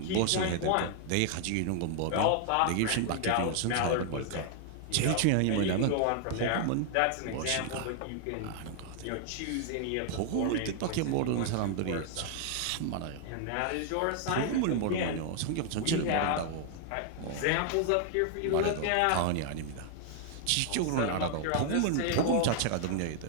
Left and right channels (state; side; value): different; both; correlation 0.00